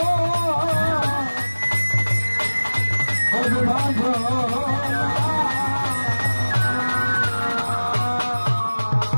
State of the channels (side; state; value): both; inverted; correlation -1.00